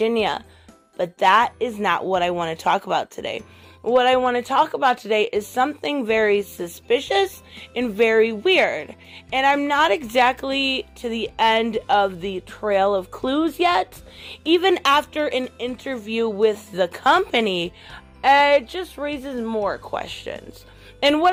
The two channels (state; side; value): identical; both; correlation 1.00